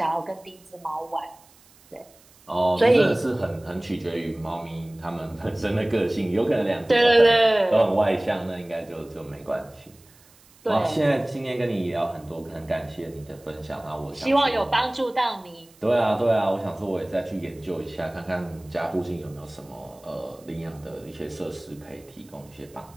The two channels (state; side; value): noise; right; hiss, 28 dB below the sound